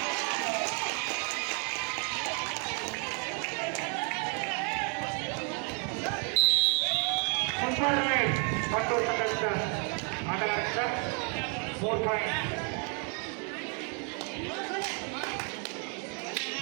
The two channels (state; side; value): quieter; left; 38.5 dB